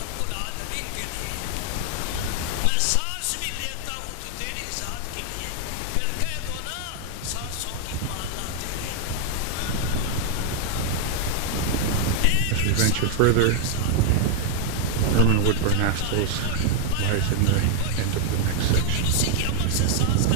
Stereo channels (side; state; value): both; different; correlation 0.00